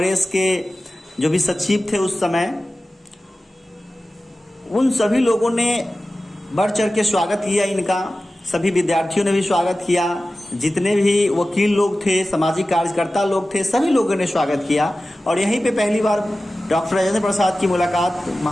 के जो भी सचिव थे उस समय, उन सभी लोगों ने बढ़ चढ़ के स्वागत किया इनका। सभी विद्यार्थियों ने भी स्वागत किया, जितने भी वकील लोग थे, सामाजिक कार्यकर्ता लोग थे, सभी लोगों ने स्वागत किया। और यहीं पे पहली बार डॉक्टर राजेंद्र प्रसाद की मुलाकात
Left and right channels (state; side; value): normal; both; correlation 0.95